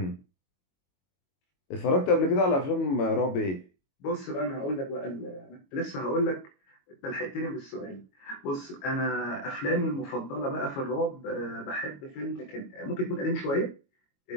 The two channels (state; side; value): late; right; 22 ms